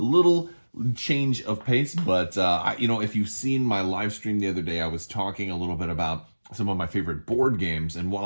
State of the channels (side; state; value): both; inverted; correlation -1.00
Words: little change of pace, but if you've seen my live stream the other day, I was talking a little bit about some of my favorite board games, and